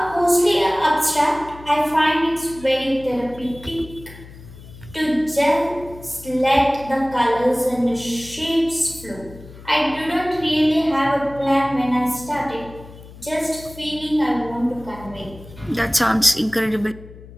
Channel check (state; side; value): noise; left; hum, 18 dB below the sound